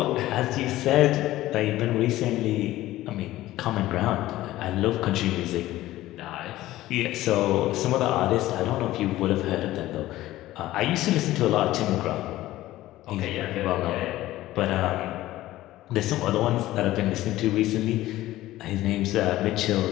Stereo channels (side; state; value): right; quieter; 15.8 dB